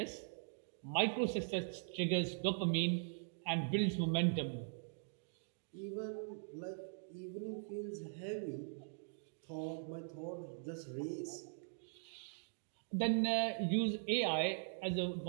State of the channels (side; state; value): left; silent; digital silence